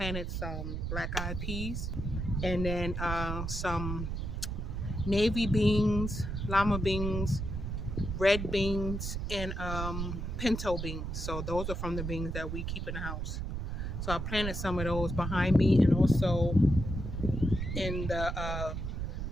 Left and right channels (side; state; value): right; noise; rumble, 3 dB below the sound